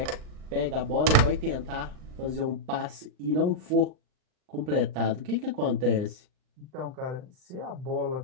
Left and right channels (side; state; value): left; late; 39 ms